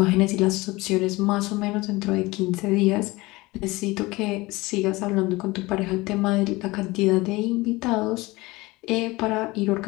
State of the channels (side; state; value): right; quieter; 21.6 dB